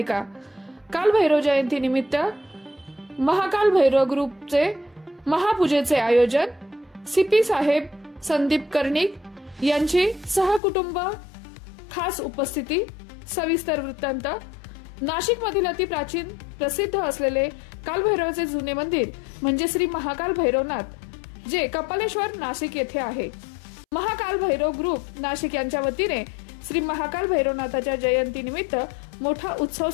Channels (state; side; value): drops out; right; at 10.6 s